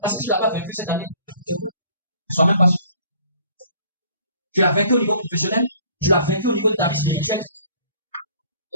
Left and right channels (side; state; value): both; inverted; correlation -0.55